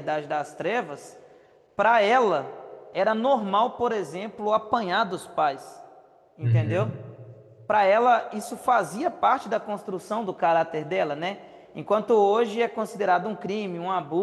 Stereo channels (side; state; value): both; identical; correlation 1.00